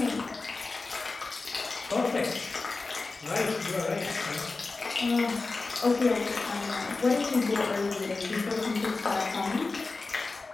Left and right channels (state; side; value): quieter; right; 3.7 dB